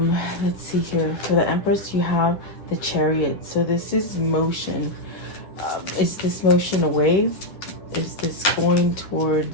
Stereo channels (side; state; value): right; late; 10 ms